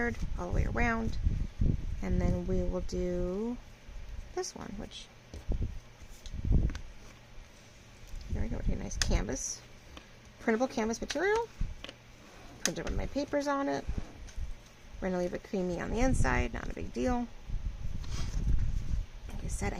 all the way around, and then we will do this one, which there we go. Take a nice canvas, printable canvas material. Printed one of my papers on it. We're gonna leave it creamy on the inside, not a big deal. Like I said,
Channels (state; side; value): identical; both; correlation 1.00